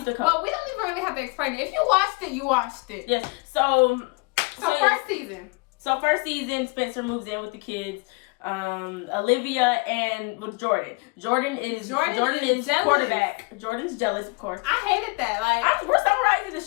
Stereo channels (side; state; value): right; quieter; 29.0 dB